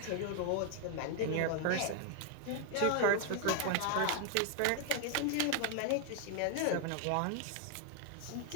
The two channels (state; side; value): different; both; correlation 0.00